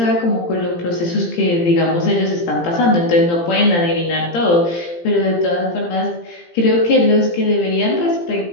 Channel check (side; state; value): right; late; 17 ms